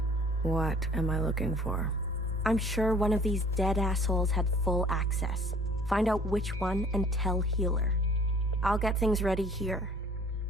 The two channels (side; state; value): both; normal; correlation 0.53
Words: What am I looking for? I'm sure one of these dead assholes had full access. Find out which one and tell Healer. I'll get things ready here.